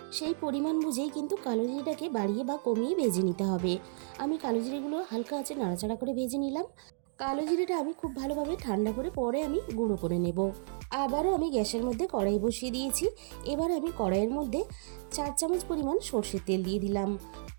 সেই পরিমাণ বুঝেই কিন্তু কালো জিরেটাকে বাড়িয়ে বা কমিয়ে ভেজে নিতে হবে। আমি কালো জিরেগুলো হালকা আঁচে নাড়াচাড়া করে ভেজে নিলাম। কালো জিরেটা আমি খুব ভালোভাবে ঠান্ডা করে পরে আমি গুঁড়ো করে নেব। আবারও আমি গ্যাসের মধ্যে কড়াই বসিয়ে দিয়েছি। এবার আমি কড়াইয়ের মধ্যে 4 চামচ পরিমাণ সর্ষের তেল দিয়ে দিলাম।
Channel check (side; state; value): left; silent; digital silence